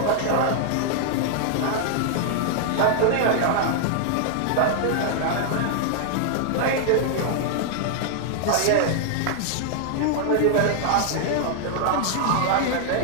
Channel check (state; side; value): different; both; correlation -0.01